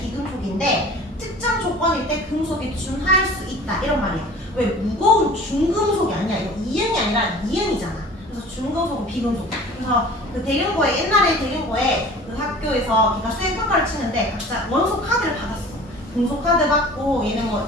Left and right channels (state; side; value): normal; both; correlation 0.44